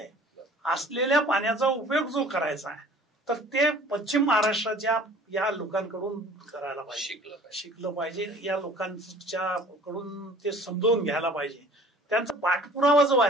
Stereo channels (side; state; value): both; normal; correlation 0.49